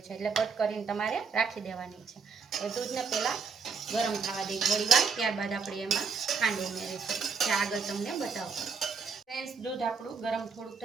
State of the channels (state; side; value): quieter; left; 5.3 dB